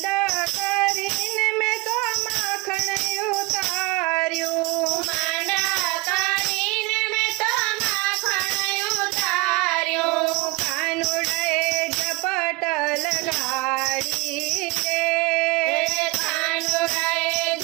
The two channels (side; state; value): left; quieter; 24.2 dB